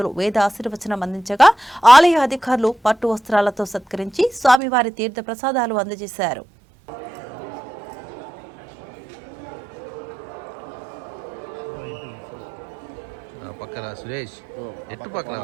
వేద ఆశీర్వచనం అందించగా ఆలయ అధికారులు పట్టు వస్త్రాలతో సత్కరించి స్వామివారి తీర్థ ప్రసాదాలు అందజేశారు. పక్కన సురేష్ ఎట్టు పక్కన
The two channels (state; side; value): drops out; left; at 4.6 s